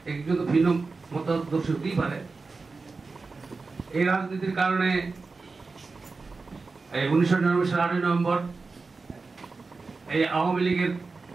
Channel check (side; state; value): left; quieter; 4.1 dB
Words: একজন তো ভিন্ন মতাদর্শ হতেই পারে। এই রাজনীতির কারণে 1999 সালের 8 নভেম্বর এই আওয়ামী লীগের